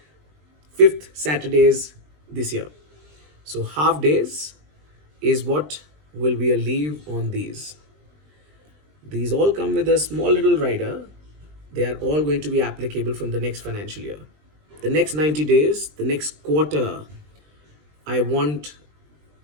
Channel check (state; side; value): late; left; 20 ms